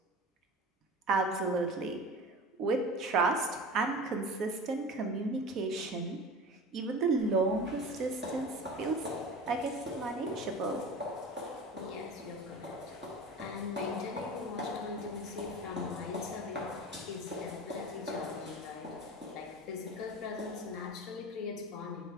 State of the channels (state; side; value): normal; both; correlation 0.34